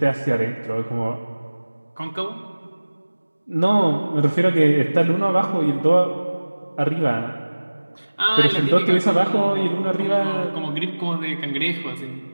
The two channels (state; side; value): inverted; both; correlation -1.00